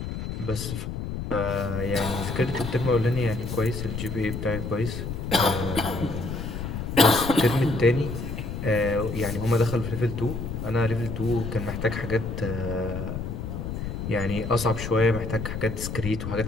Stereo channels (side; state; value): left; noise; rumble, 5 dB below the sound